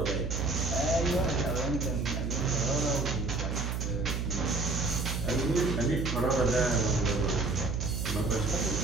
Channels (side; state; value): right; noise; hum, 1 dB below the sound